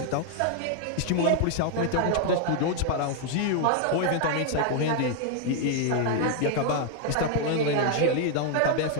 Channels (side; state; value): both; different; correlation 0.00